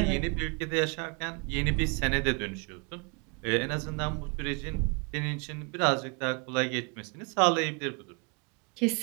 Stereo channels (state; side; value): quieter; left; 34.1 dB